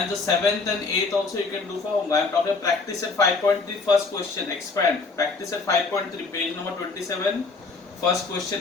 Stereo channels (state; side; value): quieter; right; 4.1 dB